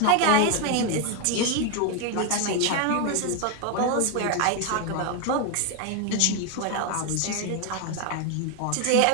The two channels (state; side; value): different; both; correlation 0.01